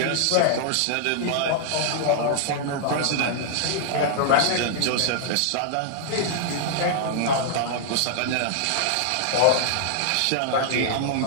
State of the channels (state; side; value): different; both; correlation -0.01